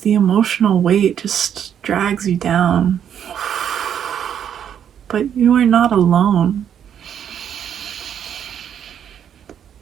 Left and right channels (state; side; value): quieter; left; 9.0 dB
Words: emotional weight just drags you down. But you are not alone.